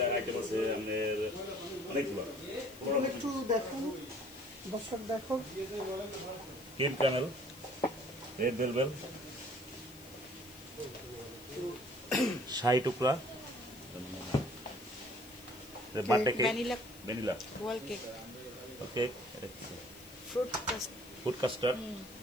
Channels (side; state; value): left; noise; hiss, 20 dB below the sound